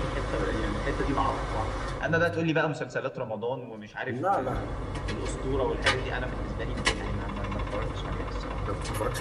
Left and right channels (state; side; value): identical; both; correlation 1.00